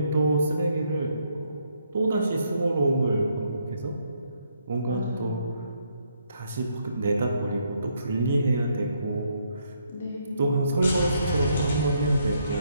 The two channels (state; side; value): inverted; both; correlation -0.73